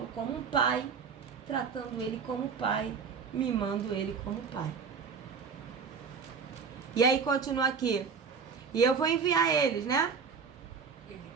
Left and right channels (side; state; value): left; quieter; 5.8 dB